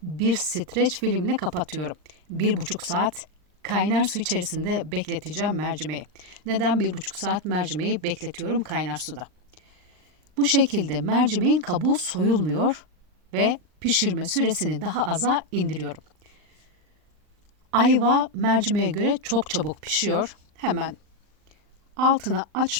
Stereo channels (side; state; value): left; late; 39 ms